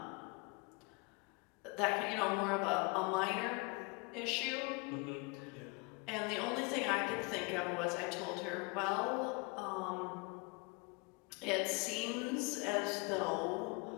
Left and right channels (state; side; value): quieter; right; 29.5 dB